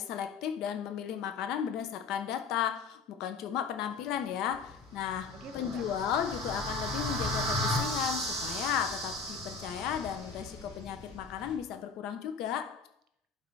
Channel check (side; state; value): right; quieter; 5.3 dB